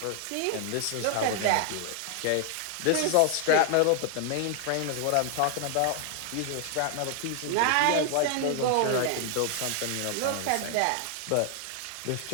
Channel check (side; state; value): both; different; correlation 0.00